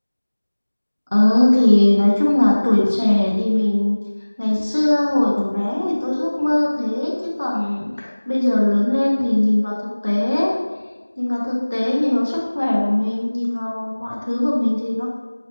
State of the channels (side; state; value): both; inverted; correlation -1.00